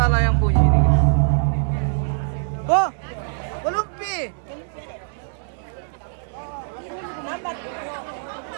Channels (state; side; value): silent; left; digital silence